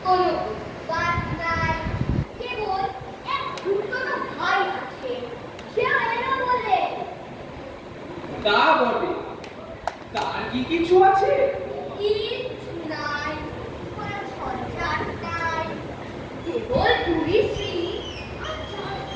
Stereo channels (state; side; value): identical; both; correlation 1.00